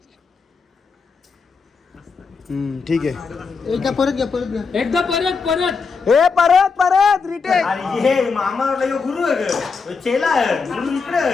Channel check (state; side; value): quieter; right; 5.0 dB